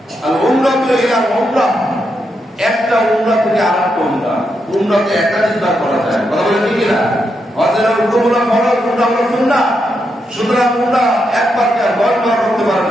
আল উমরাতু ইলা উমরাহ, একটা উমরা থেকে আরেকটা উমরা, উমরাতে একাধিকবার করা যায়। কথা বলেন ঠিক না? হজের উমরা ফরজ, উমরা হলো সুন্নাহ। সুতরাং উমরা একবার কে 10 বার করতে পারেন,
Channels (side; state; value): both; normal; correlation 0.83